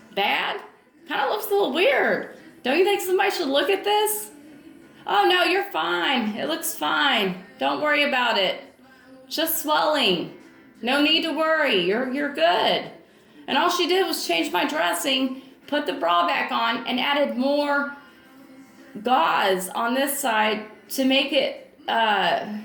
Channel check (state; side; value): identical; both; correlation 1.00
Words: bad? Kind of looks a little weird. Don't you think somebody should look at this? Oh no, you're fine. It looks fine. Don't worry about it. Just swelling. No need to worry. You're good. And all she did was change my dressing, put the bra back on, and added more gauze on this side to make it